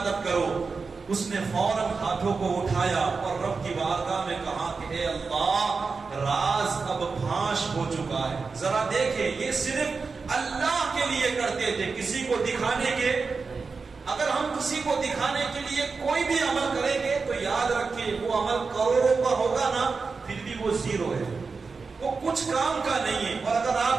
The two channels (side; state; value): left; quieter; 4.6 dB